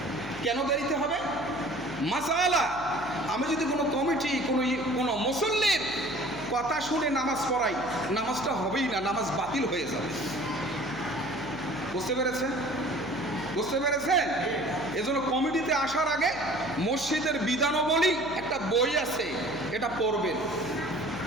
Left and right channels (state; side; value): noise; left; hum, 16 dB below the sound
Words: কেন দেরিতে হবে? মাসালা, আমি যদি কোনো কমিটি কোনো মুসল্লির কথা শুনে নামাজ পড়াই, নামাজটা হবেই না, নামাজ বাতিল হয়ে যাবে। বুঝতে পেরেছেন? বুঝতে পেরেছেন? এজন্য কমিটিতে আসার আগে মসজিদের বিধানাবলী একটা বই আছে, এটা পড়বেন,